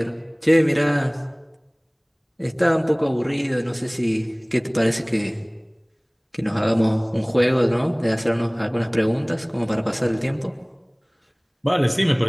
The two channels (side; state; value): both; identical; correlation 1.00